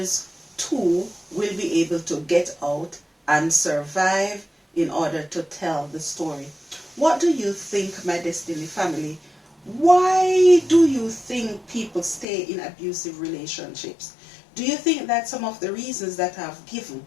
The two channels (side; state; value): right; drops out; at 12.2 s